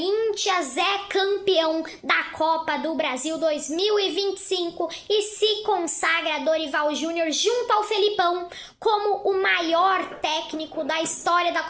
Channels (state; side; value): identical; both; correlation 1.00